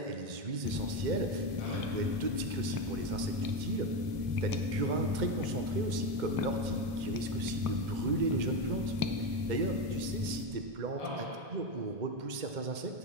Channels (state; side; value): late; left; 2.1 ms